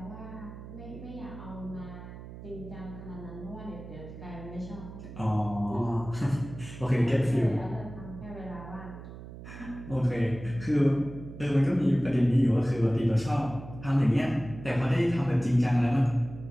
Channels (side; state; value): right; noise; hum, 13 dB below the sound